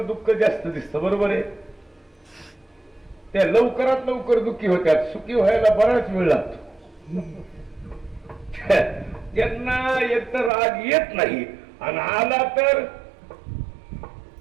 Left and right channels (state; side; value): drops out; left; at 10.5 s